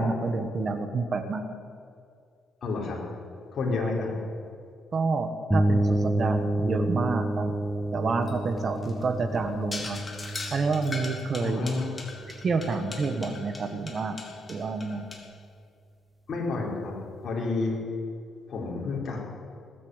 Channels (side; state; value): both; normal; correlation 0.84